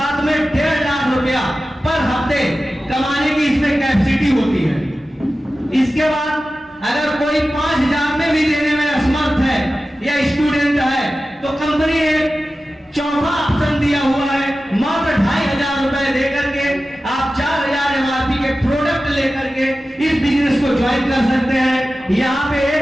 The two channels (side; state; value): both; normal; correlation 0.94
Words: में 1.5 लाख रुपया पर हफ्ते कमाने की इसमें कैपेसिटी होती है। इसके बाद अगर कोई 5,000 में भी देने में असमर्थ है या स्टूडेंट है तो कंपनी ने चौथा ऑप्शन दिया हुआ है, मात्र 2,500 रुपए देकर के आप 4,000 एमआरपी के प्रोडक्ट लेकर के इस बिजनेस को ज्वाइन कर सकते हैं। यहाँ पे